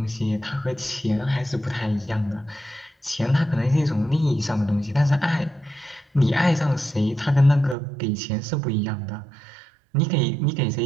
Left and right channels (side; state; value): left; drops out; at 7.8 s